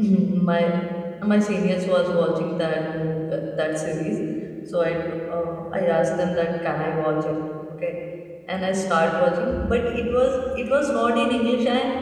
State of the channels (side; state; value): both; identical; correlation 1.00